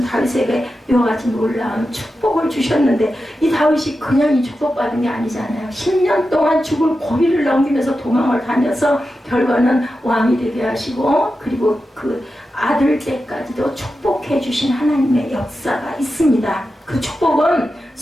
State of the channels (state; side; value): normal; both; correlation 0.91